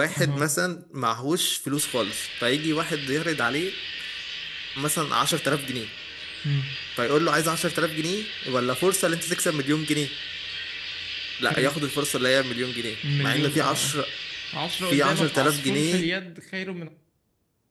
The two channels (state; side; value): identical; both; correlation 1.00